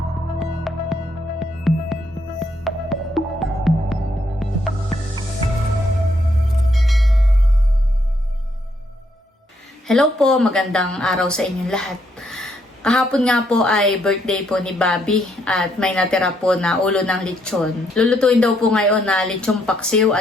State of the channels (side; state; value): both; normal; correlation 0.74